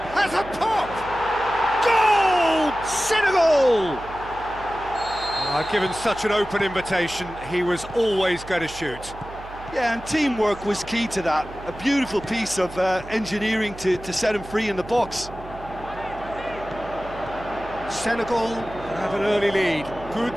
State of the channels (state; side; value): noise; right; hum, 16 dB below the sound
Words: has a pop! Goal! Senegal! Given such an open invitation, he was always going to shoot. Yeah, and teamwork was key to that. A beautiful piece of engineering to set him free in the box. Senegal have an early lead. Good